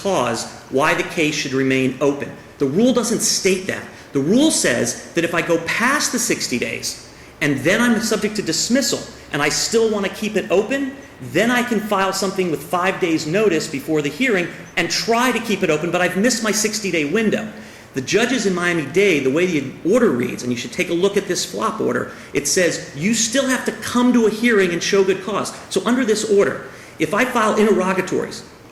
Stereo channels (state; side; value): identical; both; correlation 1.00